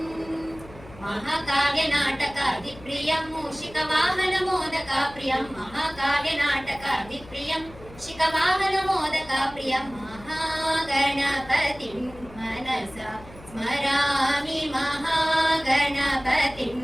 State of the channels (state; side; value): noise; left; hum, 19 dB below the sound